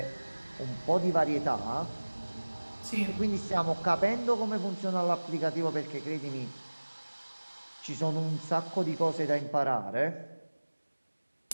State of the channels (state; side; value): inverted; both; correlation -1.00